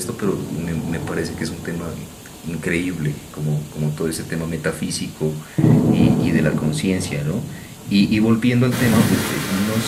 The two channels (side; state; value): both; identical; correlation 1.00